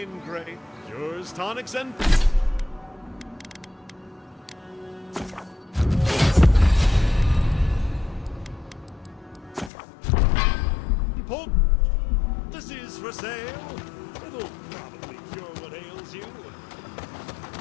great cures, tonics, and... This is for sale. It'll probably cure what ails you.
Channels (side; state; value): right; drops out; at 9.7 s